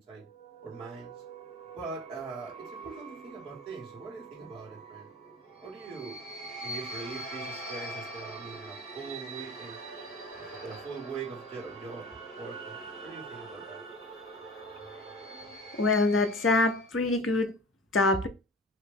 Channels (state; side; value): normal; both; correlation 0.39